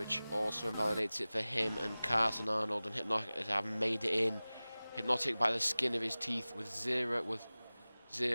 also invalidates it for him, and Carson Arnold and Hypnotic have made it in. Hypnotic by the skin of his teeth with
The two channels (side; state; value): both; inverted; correlation -0.98